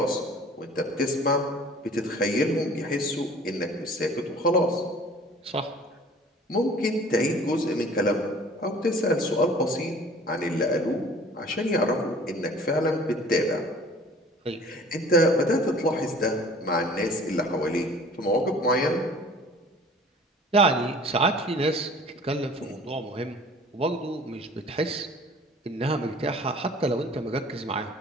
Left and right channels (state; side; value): normal; both; correlation 0.48